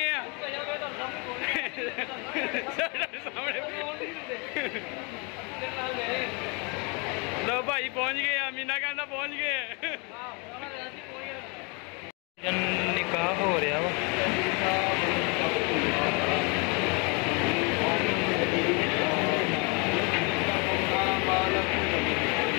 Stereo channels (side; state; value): right; quieter; 31.9 dB